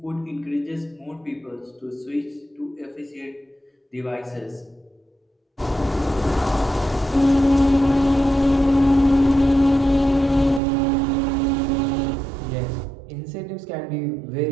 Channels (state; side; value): drops out; left; at 10.6 s